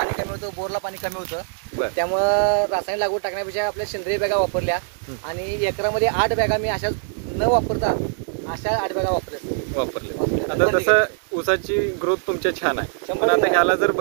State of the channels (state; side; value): silent; left; digital silence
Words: कमी होतं, बोरला पाणी कमी होतं, त्यामुळं रासायनिक लागवड टाकण्यापेक्षा आपल्या सेंद्रिय बॅगा वापरल्या आणि एकरामध्ये 8 बॅगा मी अशा न वापरता अशा 8 बॅगा वापरले. आता तसं ऊसाची ग्रोथ तुमच्या छान आहे, पण आता ह्याला जर